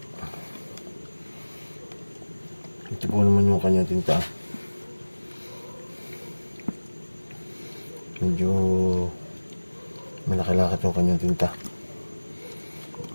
Ito po naman yung kanyang tinta. Medyo malaki-lakit yung kanyang tinta.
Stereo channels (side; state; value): both; inverted; correlation -1.00